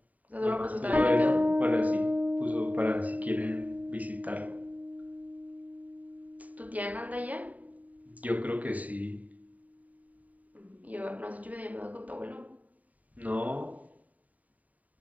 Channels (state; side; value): late; left; 0.072 ms